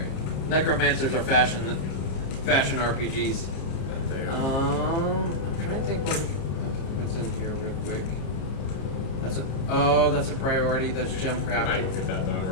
Necromancers are fashion RPGs. They are. I'm trying to think what's in here real quick. That's a priority. That's gem I crafting. might go get that done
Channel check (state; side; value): late; right; 30 ms